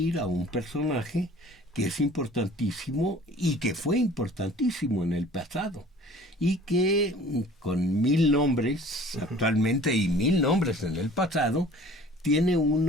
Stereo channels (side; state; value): both; normal; correlation 0.48